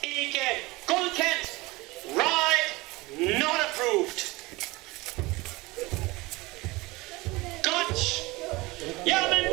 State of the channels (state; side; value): quieter; left; 22.2 dB